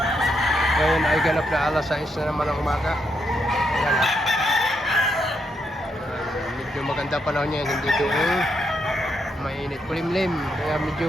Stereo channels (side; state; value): both; normal; correlation 0.79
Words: Ngayon ay ganap na alas 6 na naman ng umaga. Ayan ah. Medyo maganda panahon niya, hindi doon mainit. Kulimlim, kaya medyo